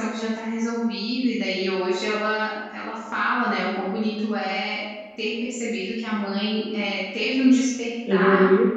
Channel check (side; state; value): both; identical; correlation 1.00